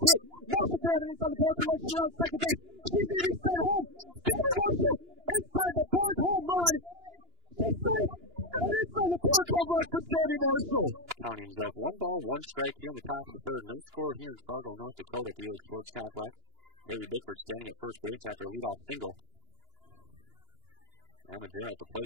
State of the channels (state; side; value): late; left; 2.9 ms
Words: hit. Marshall could have it inside the park run. She's around second base. She's going to be sent home. Sammy Marshall inside the park home run. She's safe. And inside the park home run for Sammy Marshall. Counting is up 1 ball, 1 strike here in the top of the third. No score here in Fargo, North Dakota at the Elig Sports Complex. Haley Bickford standing at first base after a leadoff single. Emma Gerald at the